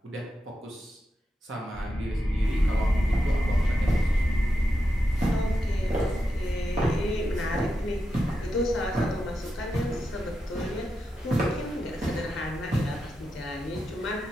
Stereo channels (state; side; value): normal; both; correlation 0.88